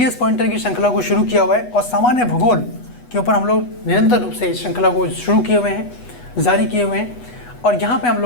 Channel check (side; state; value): right; late; 8.2 ms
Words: पॉइंटर की श्रृंखला को शुरू किया हुआ है और सामान्य भूगोल के ऊपर हम लोग निरंतर रूप से इस श्रृंखला को शुरू किए हुए हैं, जारी किए हुए हैं। और यहाँ पर हम